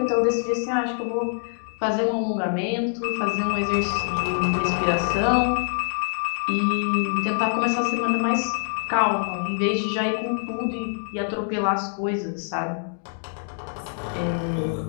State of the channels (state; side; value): silent; right; 62 dB below the other